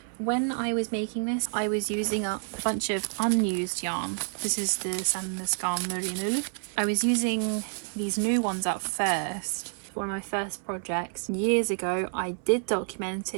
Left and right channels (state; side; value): silent; left; digital silence